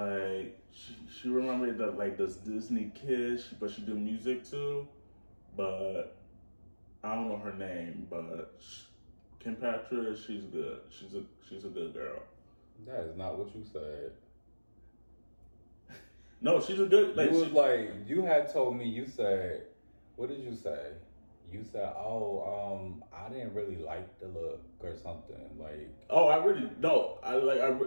she remembered that like this Disney kid, but she do music too. But I don't know her name, but Kim Petras, she's good. She's a good girl. That is not what you said. No, she's a good. You had told me. You said, what did you say? You said, I didn't really like the look or something like. Oh, I really no. I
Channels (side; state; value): both; inverted; correlation -1.00